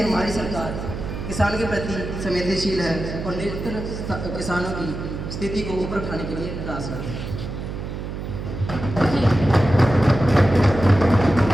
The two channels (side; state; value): right; noise; hum, 7 dB below the sound